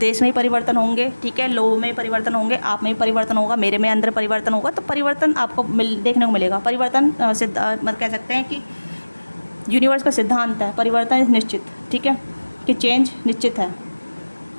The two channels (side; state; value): both; inverted; correlation -1.00